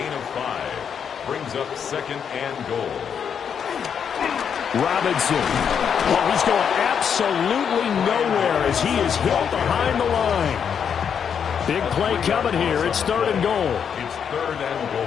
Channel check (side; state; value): right; quieter; 7.5 dB